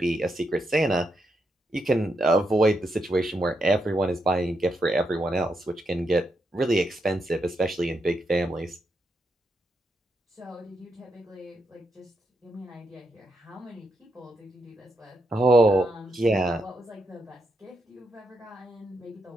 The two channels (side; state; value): both; normal; correlation 0.82